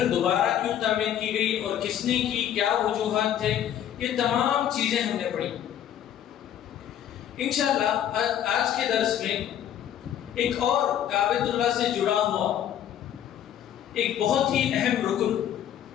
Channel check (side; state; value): right; quieter; 10.4 dB